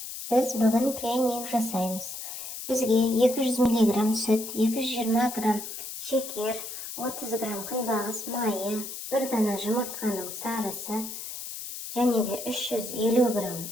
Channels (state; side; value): noise; left; hiss, 8 dB below the sound